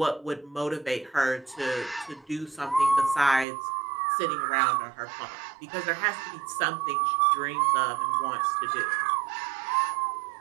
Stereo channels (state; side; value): drops out; left; at 3.5 s